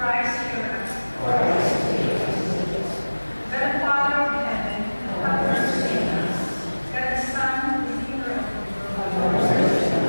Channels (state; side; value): inverted; both; correlation -1.00